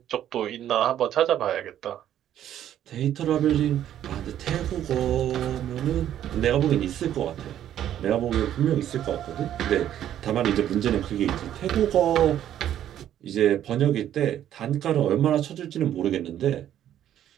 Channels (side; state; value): left; quieter; 11.1 dB